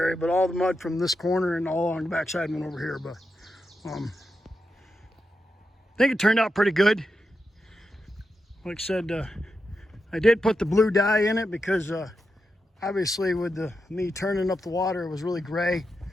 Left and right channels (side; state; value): both; normal; correlation 0.87